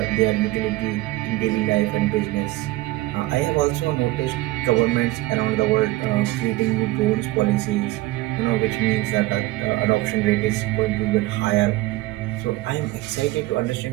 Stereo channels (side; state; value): left; quieter; 18.4 dB